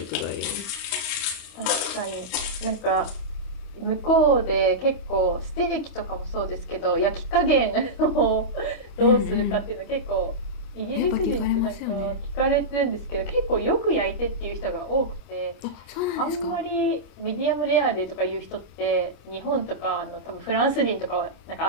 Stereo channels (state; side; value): late; right; 25 ms